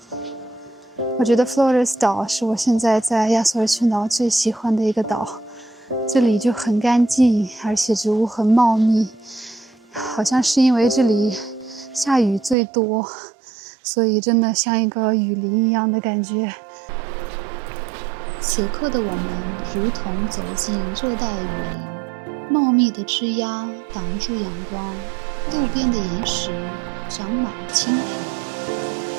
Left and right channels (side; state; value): left; drops out; at 12.6 s